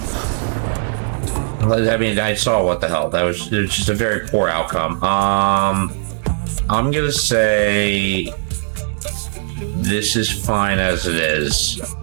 I mean, I saw what the hell. It was just a very poor outcome. I'm gonna say this is fine as it is.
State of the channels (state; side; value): silent; left; digital silence